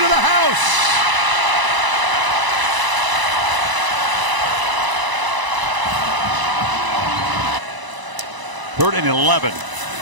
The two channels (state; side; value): late; left; 1.0 ms